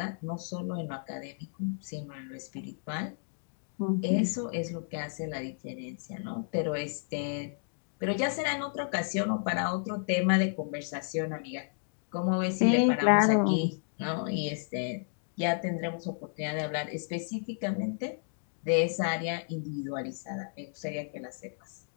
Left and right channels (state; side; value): silent; right; digital silence